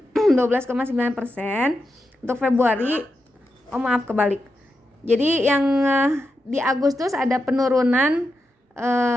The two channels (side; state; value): both; normal; correlation 0.87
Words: Untuk Februari, maaf kebalik. Jadi yang di Agustus ada penurunan